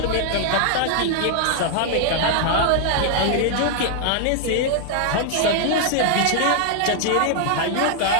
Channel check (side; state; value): both; different; correlation 0.00